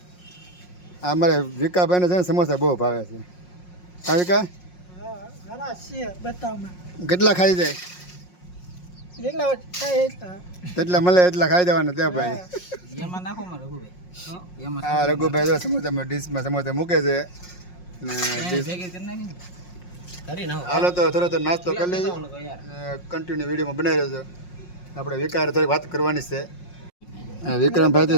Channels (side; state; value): right; late; 5.5 ms